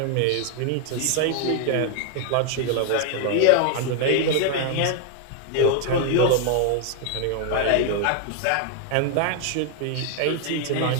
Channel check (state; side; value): different; both; correlation 0.00